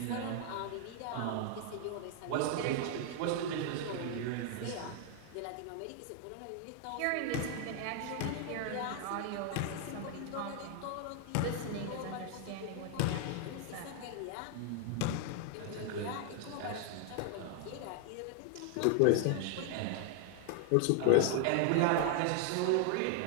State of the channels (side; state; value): both; different; correlation 0.00